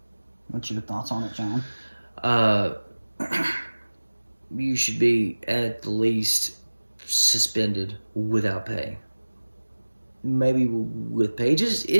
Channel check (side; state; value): both; inverted; correlation -1.00